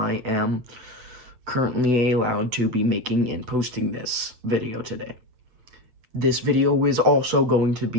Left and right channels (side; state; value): left; late; 8.8 ms